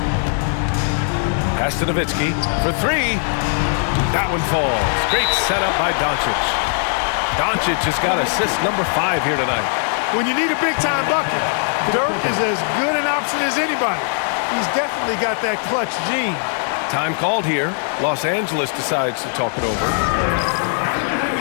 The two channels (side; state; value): right; silent; 58 dB below the other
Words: Pass to Nowitzki for three. That one falls. Great setup by Doncic. Doncic has got assist number 5 here tonight. When you need a big-time bucket, Dirk is as good an option as anybody. He's definitely got that clutch gene. Time called here. Los Angeles decides to talk it over.